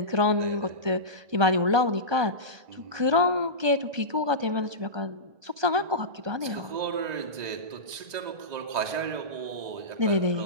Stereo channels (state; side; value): late; left; 2.0 ms